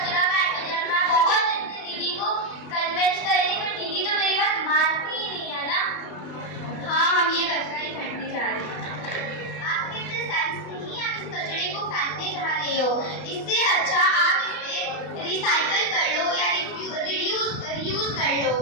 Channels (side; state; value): right; late; 32 ms